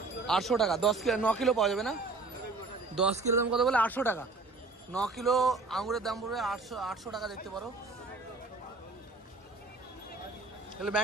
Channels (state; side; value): quieter; left; 3.7 dB